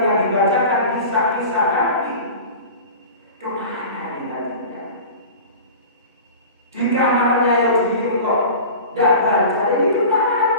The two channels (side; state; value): both; inverted; correlation -0.36